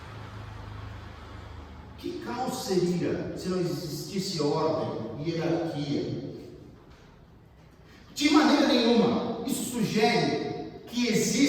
Que caos seria se não existisse ordem e hierarquia? De maneira nenhuma. Isso sugere que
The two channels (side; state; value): both; identical; correlation 1.00